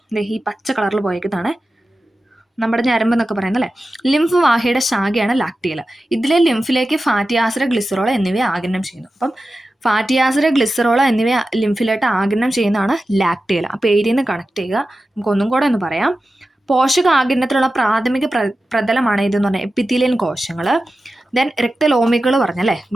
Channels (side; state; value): both; normal; correlation 0.93